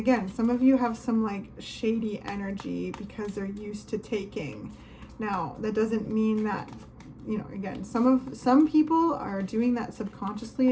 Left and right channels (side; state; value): both; identical; correlation 1.00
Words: some of you have some like shady energy because they're used to taking. Now that doesn't mean that, you know, again, some people are doing that